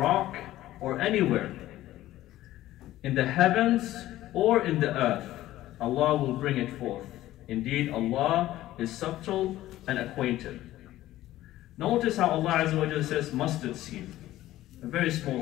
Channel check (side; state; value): right; quieter; 14.9 dB